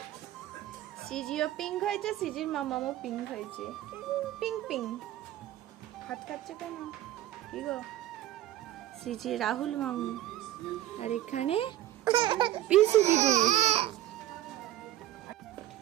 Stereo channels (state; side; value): quieter; left; 14.1 dB